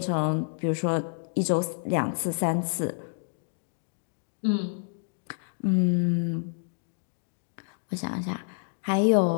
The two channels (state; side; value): silent; right; digital silence